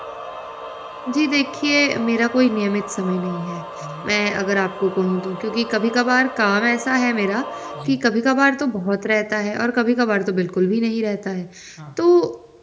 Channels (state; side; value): identical; both; correlation 1.00